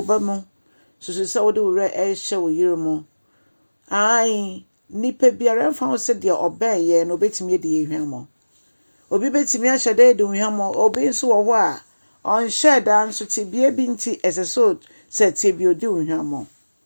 mu sususa wo de wo re ehye wo yire mu ai nipa biara mfa wo se de obaye no betimi de yehwamo obi betimi ahye de hwamo obi nso wo ho a onhye da nso tibie bi nti eseso se tibie odi hwamo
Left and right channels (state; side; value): inverted; both; correlation -1.00